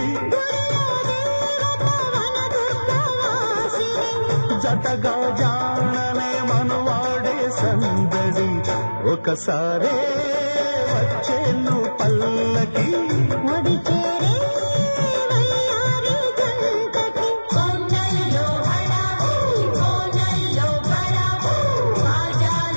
జతగా జాననే మనువాడే సందడి ఒకసారే వచ్చేను పల్లకి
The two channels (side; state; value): both; inverted; correlation -1.00